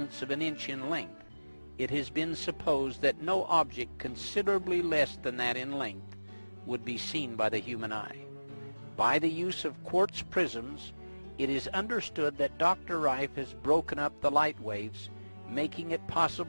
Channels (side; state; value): both; inverted; correlation -1.00